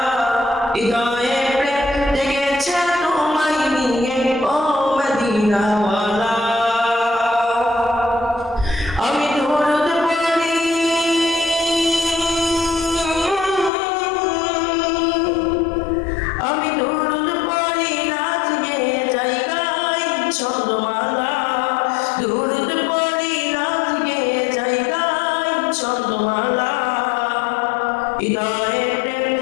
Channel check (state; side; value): drops out; right; at 13.7 s